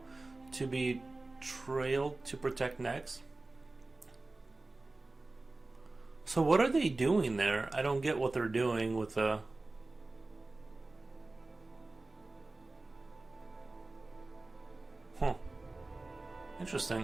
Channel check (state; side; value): quieter; left; 3.2 dB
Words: to be trailed to protect necks. So what are they doing there? I don't get what they're doing with the... Huh.